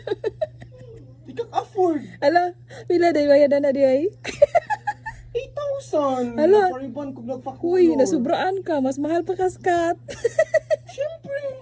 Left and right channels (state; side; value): identical; both; correlation 1.00